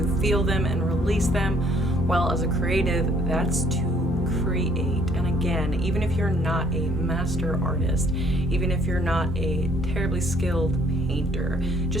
feel them and release them? Well, as a creative, that's to create. And again, even if you're not a master artist, even if you're not a terribly skilled painter,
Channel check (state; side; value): normal; both; correlation 0.62